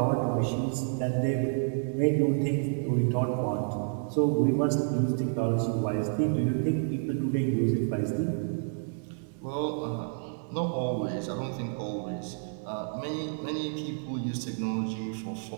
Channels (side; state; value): left; silent; 56 dB below the other